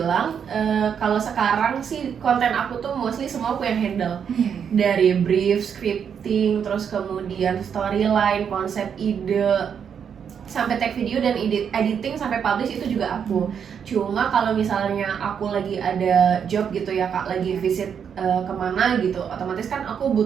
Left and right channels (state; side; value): quieter; left; 7.5 dB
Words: kalau sekarang sih konten aku tuh mostly semua aku yang handle. Dari brief, scripting, terus kemudian storyline, konsep ide, sampai tag video dan editing sampai publish itu juga aku. Cuma kalau misalnya aku lagi ada job gitu ya Kak, lagi visit kemana gitu, otomatis kan aku